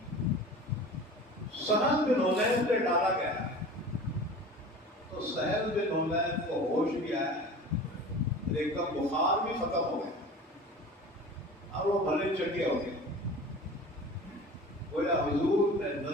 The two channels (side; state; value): both; normal; correlation 0.38